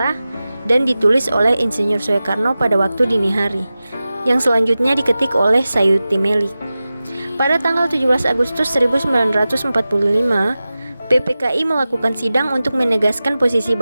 dan ditulis oleh Insinyur Soekarno pada waktu dini hari, yang selanjutnya diketik oleh Sayuti Melik. Pada tanggal 17 Agustus 1945, PPKI melakukan sidang untuk menegaskan posisi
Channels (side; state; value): both; inverted; correlation -0.95